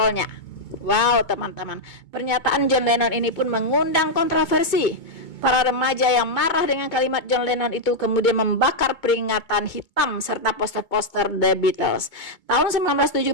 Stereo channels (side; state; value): right; late; 2.2 ms